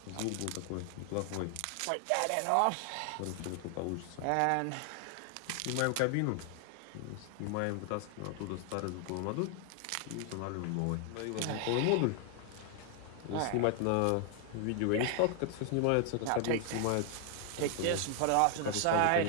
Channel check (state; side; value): different; both; correlation 0.00